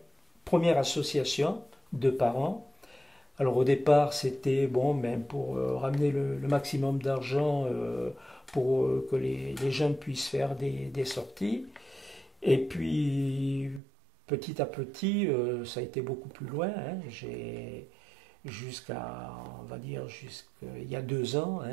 première association de parents. Alors au départ, c'était bon, ben, pour ramener le maximum d'argent pour que les jeunes puissent faire des sorties. Et puis petit à petit, ça a été beaucoup plus loin, hein. J'ai jusqu'à, on va dire, jusqu'il y a 2 ans,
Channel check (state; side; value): drops out; left; at 13.8 s